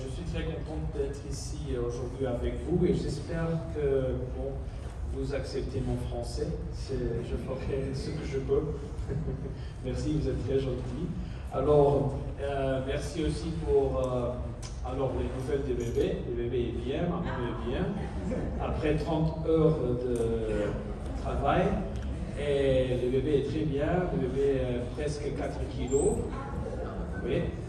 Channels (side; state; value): both; identical; correlation 1.00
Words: suis très contente d'être ici aujourd'hui avec vous et j'espère que vous acceptez mon français. Je ferai ce que je peux. Merci, vous êtes très gentil. Alors, merci aussi pour les nouvelles des bébés. Le bébé est bien, maman est bien. Après 30 heures de travail, et le bébé est très bien. Le bébé est presque 4 kilos. Oui,